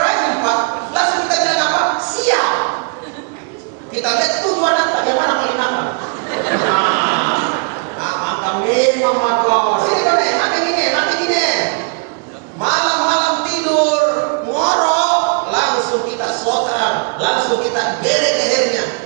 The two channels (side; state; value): left; quieter; 37.6 dB